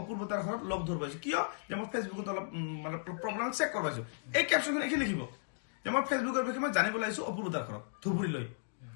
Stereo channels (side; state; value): right; silent; digital silence